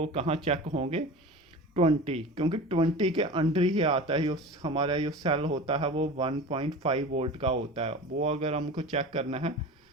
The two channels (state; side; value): normal; both; correlation 0.33